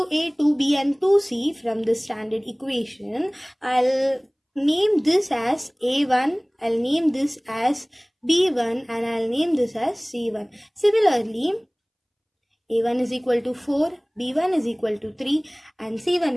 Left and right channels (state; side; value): identical; both; correlation 1.00